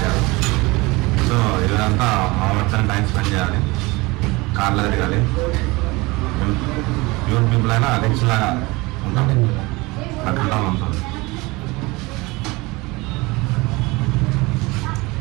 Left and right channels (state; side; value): quieter; left; 23.3 dB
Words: సో ఇదంతా మా వచ్చాను టైం స్పెండ్ చేయాలి, కార్లో తిరగాలి. యూత్ పీపుల్ అయినా రిచ్ లాగా ఉంటాం, అట్లా ఉంటుంది.